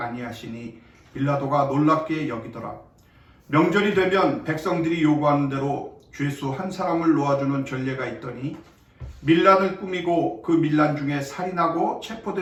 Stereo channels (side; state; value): both; identical; correlation 1.00